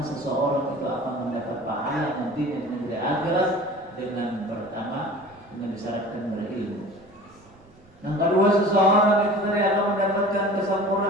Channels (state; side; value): noise; right; rumble, 27 dB below the sound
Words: itu akan mendapat pahala nanti di negeri akhirat dengan pertama dengan disyaratkan berilmu. Yang kedua seseorang itu tadi akan mendapatkan